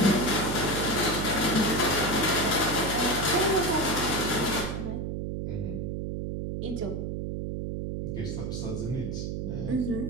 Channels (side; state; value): right; noise; hum, 3 dB below the sound